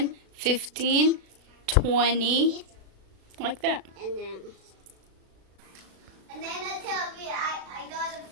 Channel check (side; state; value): left; late; 36 ms